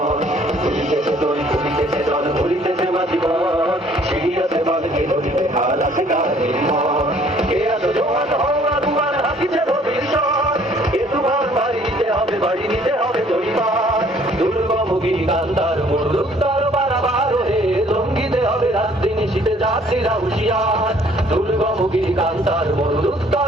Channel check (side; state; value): both; normal; correlation 0.59